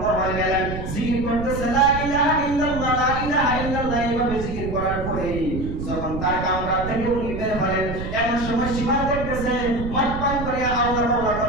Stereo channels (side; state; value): right; noise; rumble, 6 dB below the sound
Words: হয়ে গেলেন, জিকির করতেছে লা ইলাহা ইল্লাল্লাহ লা ইলাহা ইল্লাল্লাহ এইভাবে জিকির করার পরে যখন তার কামরা থেকে উনি বের হলেন এমন সময় সীমা দেখতেছে মদ পান করে আল্লাহ আল্লাহ